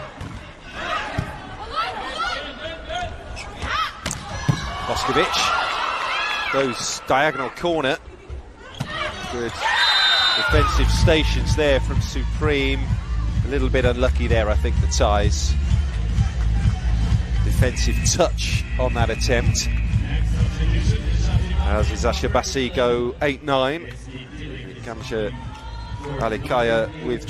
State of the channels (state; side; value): identical; both; correlation 1.00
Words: Boskovic goes diagonal corner. Good defensive stations there from Supreme. A little bit unlucky there, I think, the ties. Defensive touch on that attempt. As Eczacibasi go 8-9. Kamsha Alikaya